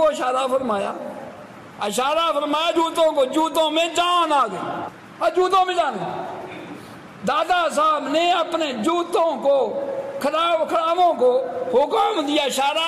اشارہ فرمایا جوتوں کو، جوتوں میں جان آ گئی اور جوتوں میں جان گئی، دادا صاحب نے اپنے جوتوں کو کھڑاووں کو حکم دیا،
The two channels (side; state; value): both; identical; correlation 1.00